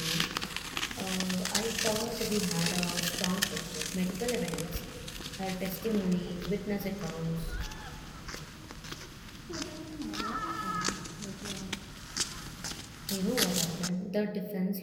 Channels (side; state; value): both; identical; correlation 1.00